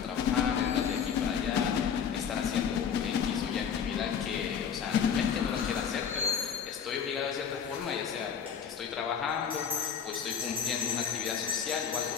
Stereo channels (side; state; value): right; quieter; 7.4 dB